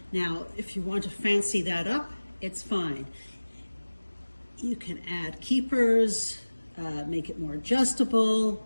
Now, if you want to fancy that up, it's fine. You can add keepers, make it more adjustable,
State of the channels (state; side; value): inverted; both; correlation -1.00